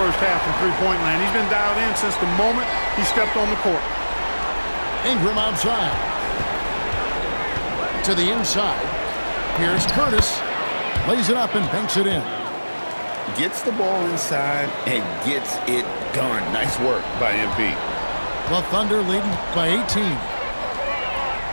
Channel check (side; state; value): both; inverted; correlation -1.00